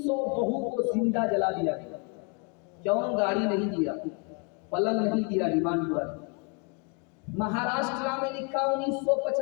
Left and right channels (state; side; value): quieter; right; 34.2 dB